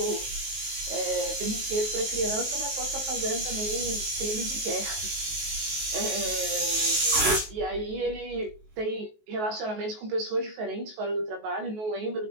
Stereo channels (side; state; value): left; late; 19 ms